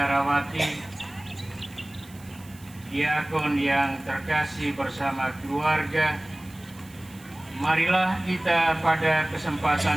diakon yang terkasih bersama keluarga, marilah kita pada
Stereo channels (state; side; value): noise; right; hiss, 23 dB below the sound